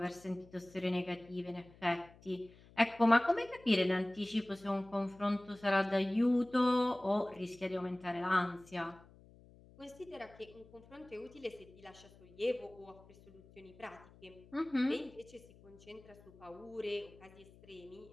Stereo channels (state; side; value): noise; left; hum, 23 dB below the sound